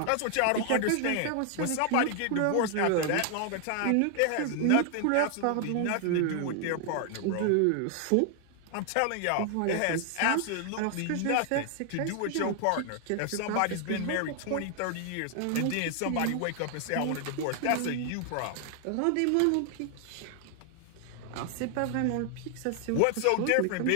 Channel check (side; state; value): both; different; correlation 0.00